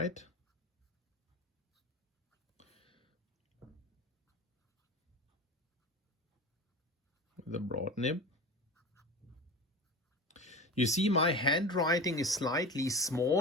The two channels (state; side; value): normal; both; correlation 0.31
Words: The broad nib. You see my handwriting is slightly